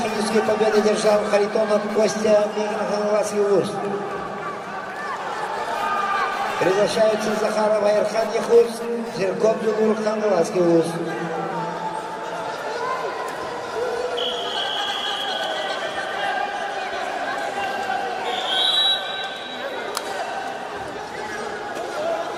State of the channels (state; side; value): identical; both; correlation 1.00